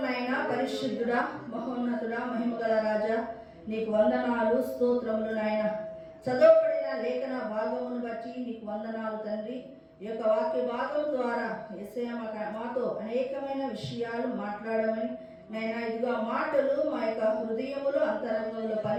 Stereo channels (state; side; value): identical; both; correlation 1.00